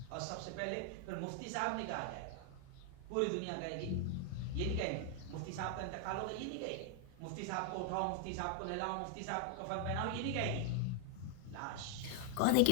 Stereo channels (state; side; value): different; both; correlation 0.00